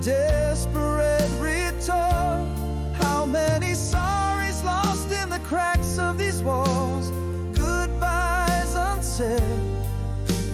desperate return. How many sorries lost in the cracks of these walls, goodbyes unsaid,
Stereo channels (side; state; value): both; identical; correlation 1.00